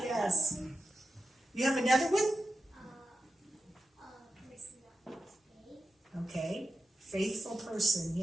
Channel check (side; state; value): both; normal; correlation 0.90